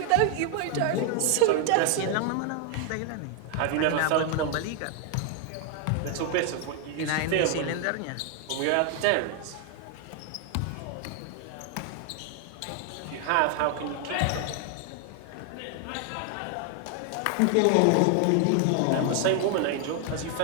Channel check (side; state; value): both; different; correlation 0.00